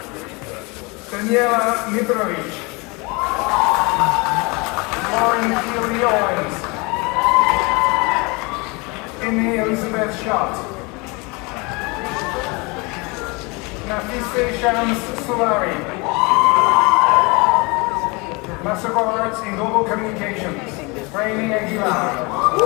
Daniela Mitrovic. Lauren Keely Owens. Amy Elizabeth Schott. Nafise Shams Sulari. Master of Arts in Global Communications, Rainy Aguilar.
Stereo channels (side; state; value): right; quieter; 27.7 dB